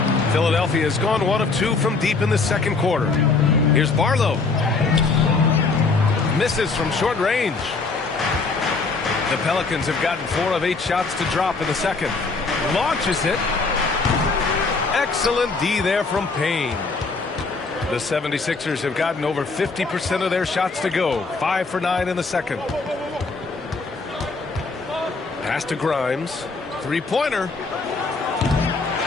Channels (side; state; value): right; quieter; 4.1 dB